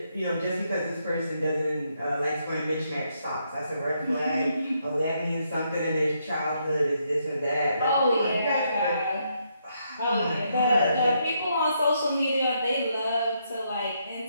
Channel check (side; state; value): both; inverted; correlation -0.77